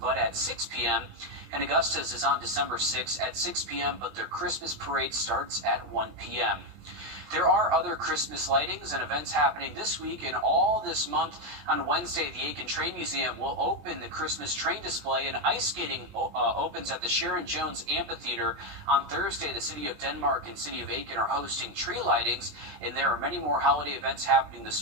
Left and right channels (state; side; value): late; left; 20 ms